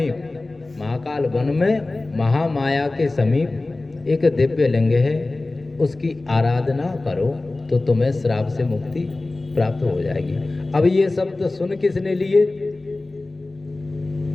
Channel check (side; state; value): right; quieter; 3.1 dB